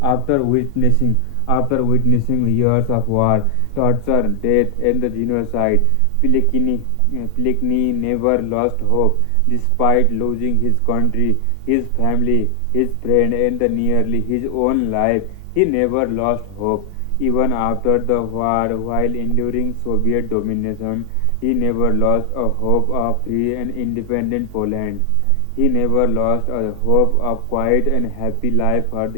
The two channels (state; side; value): different; both; correlation 0.00